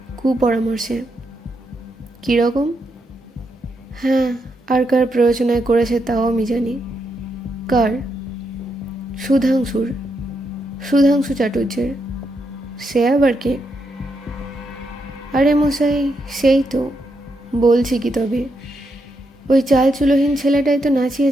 কুপরামর্শে। কীরকম? হ্যাঁ, আর কার প্ররোচনায় করেছে তাও আমি জানি। কার? সুধাংশুর, সুধাংশু চাটুর্যের। সে আবার কে? আরে মশাই, সেই তো বলছি কি, তবে ওই চালচুলোহীন ছেলেটাই তো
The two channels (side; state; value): both; normal; correlation 0.81